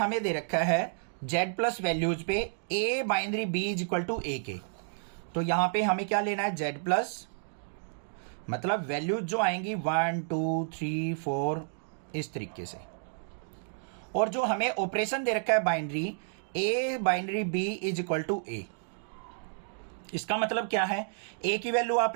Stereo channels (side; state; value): left; silent; digital silence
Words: दे रखा है जेड प्लस वैल्यूज पे A binary B is equal to A के, तो यहां पे हमें क्या लेना है, जेड प्लस, मतलब वैल्यूज जो आएंगी 1 2 3 4 इस तरीके से, और जो हमें ऑपरेशन दे रखा है binary, A binary B is equal to A. इसका मतलब क्या है, ए की वैल्यू